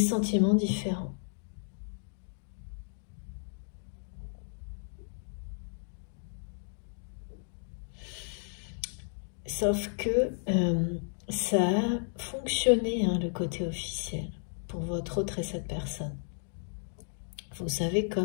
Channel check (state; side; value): silent; right; digital silence